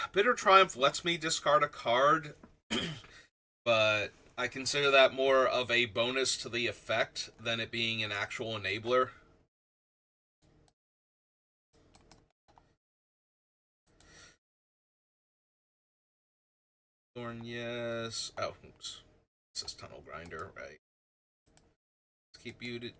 Bitter Triumph lets me discard a card but I consider that more of a bonus to the effect than it being an actual enabler. Thorn, yes. Oh, oops. This is Tunnel Grinder, right? Let's keep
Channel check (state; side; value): identical; both; correlation 1.00